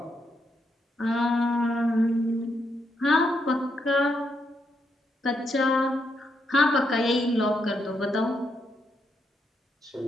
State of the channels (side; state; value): both; normal; correlation 0.79